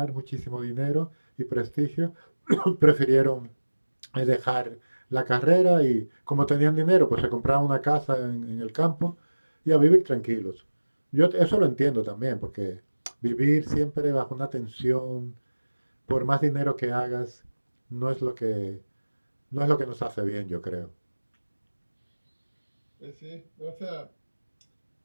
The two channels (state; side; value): inverted; both; correlation -1.00